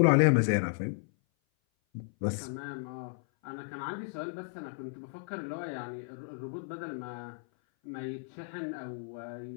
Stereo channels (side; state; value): right; silent; 55 dB below the other